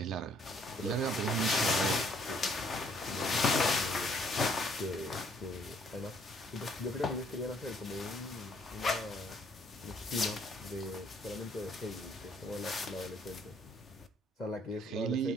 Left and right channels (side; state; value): both; normal; correlation 0.64